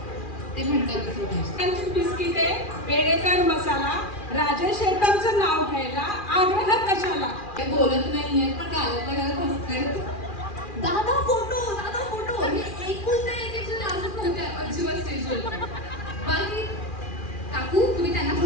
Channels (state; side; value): late; right; 2.4 ms